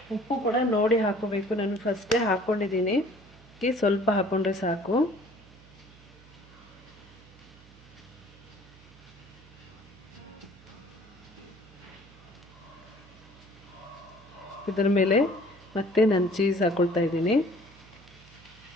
ಕೂಡ ನೋಡಿ ಹಾಕೋಬೇಕು. ನಾನು ಫಸ್ಟೇ ಹಾಕ್ಕೊಂಡಿದ್ದೀನಿ, ಸ್ವಲ್ಪ ಹಾಕ್ಕೊಂಡ್ರೆ ಸಾಕು. ಇದರ ಮೇಲೆ ಮತ್ತೆ ನಾನು ಚೀಸ್ ಹಾಕ್ಕೊಳ್ತಾ ಇದ್ದೀನಿ.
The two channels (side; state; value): right; noise; hum, 23 dB below the sound